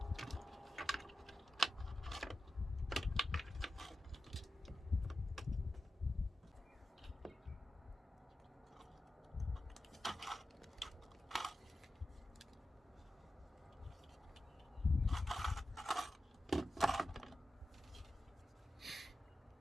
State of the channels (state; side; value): normal; both; correlation 0.92